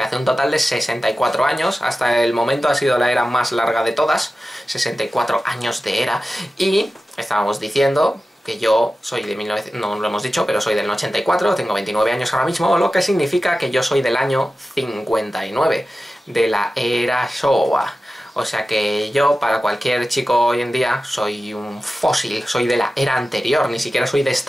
hace un total de 64 años. Hasta el momento ha sido la era más larga de todas. 64 años de era. Y estábamos diciendo que yo soy de 1900, no lo hemos dicho, pero soy del 84, tengo 29 años ahora mismo, lo que significa que yo soy del año 59, de la era Showa. O sea que yo, para cualquier chico hoy en día, soy un fósil, soy de la era anterior, ni siquiera soy de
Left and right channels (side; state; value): both; normal; correlation 0.94